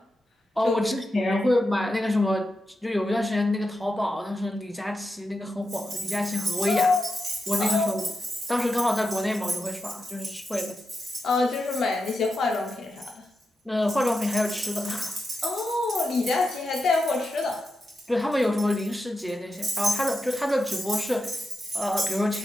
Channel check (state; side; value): normal; both; correlation 0.88